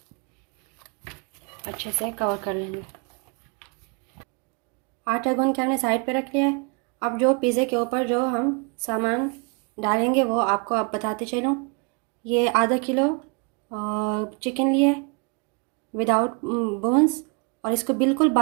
अच्छे से कवर कर लेंगे। आटा गूंद के हमने साइड पे रख लिया है। अब जो पिज़्ज़े के ऊपर जो हम सामान डालेंगे वो आपको अब बताते चलूँ। ये आधा किलो चिकन लिया है विदाउट बोन्स, और इसको बिल्कुल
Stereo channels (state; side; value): quieter; left; 34.3 dB